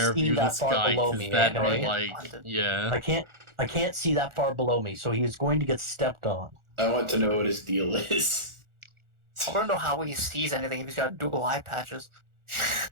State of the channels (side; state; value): left; late; 1.4 ms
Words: this guy because that'd be like, yeah. I can't see that far below me, so he's going to get stepped on. I want to know what his deal is. I want to know how he sees anything if he's got dual eye patches.